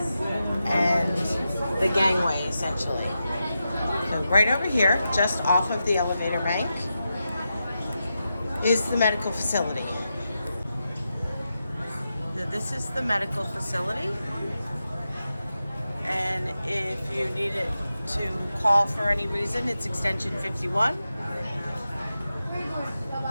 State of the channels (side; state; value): both; inverted; correlation -0.89